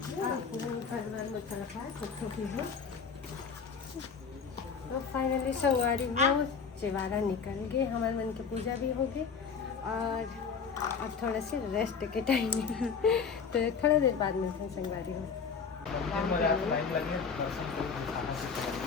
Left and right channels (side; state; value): right; quieter; 5.8 dB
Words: परिवार में चल रहा है छोटी है। तो फाइनली संगवारी वो चिवारा निकल गए, हमारे मन की पूजा भी हो गई और अब थोड़ा से रेस्ट के टाइम तो थोड़ा देर बाद मिलते हैं संगवारी में।